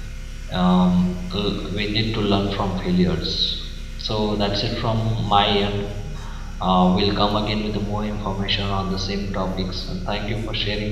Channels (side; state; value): both; identical; correlation 1.00